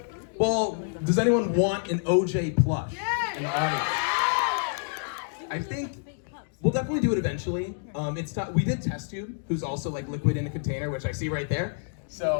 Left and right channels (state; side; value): silent; right; digital silence